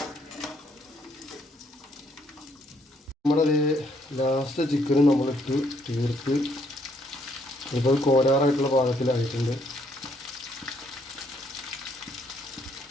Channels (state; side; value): normal; both; correlation 0.69